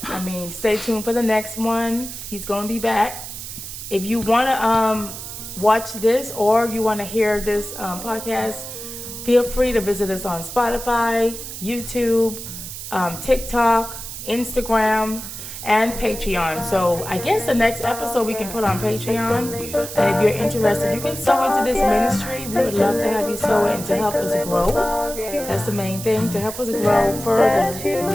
I mean, stay tuned for the next one. He's going to be back. If you want to watch this or you want to hear this podcast, feel free to visit us on Spotify, YouTube, TikTok, Instagram, and Patreon. So I guess the next episode we can put on Patreon. And if you're interested, you can sow into this ministry. We would love to have you sow in to help us grow. That's the main thing, to help us grow further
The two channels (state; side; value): noise; right; hiss, 10 dB below the sound